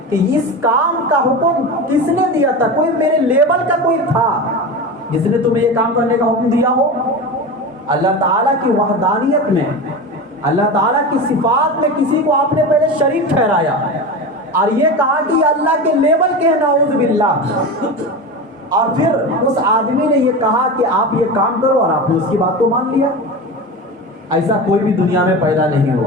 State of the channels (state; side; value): normal; both; correlation 0.26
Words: کہ اس کام کا حکم کس نے دیا تھا؟ کوئی میرے لیبل کا کوئی تھا جس نے تمہیں یہ کام کرنے کا حکم دیا ہو؟ اللہ تعالیٰ کی وحدانیت میں، اللہ تعالیٰ کی صفات میں کسی کو آپ نے پہلے شریک ٹھہرایا اور یہ کہا کہ یہ اللہ کے لیبل کے ہیں، نعوذ باللہ، اور پھر اس آدمی نے یہ کہا کہ آپ یہ کام کرو اور آپ نے اس کی بات کو مان لیا۔ ایسا کوئی بھی دنیا میں پیدا نہیں